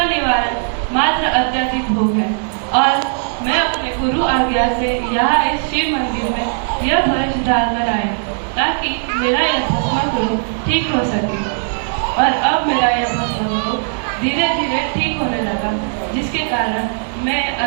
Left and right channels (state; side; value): silent; left; digital silence